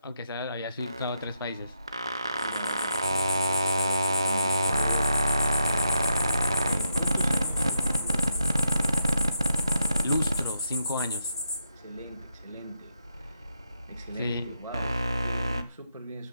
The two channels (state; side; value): inverted; both; correlation -0.82